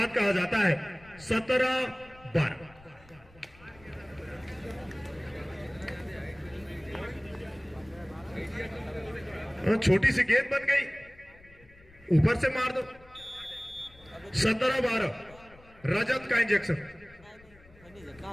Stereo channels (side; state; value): left; noise; rumble, 25 dB below the sound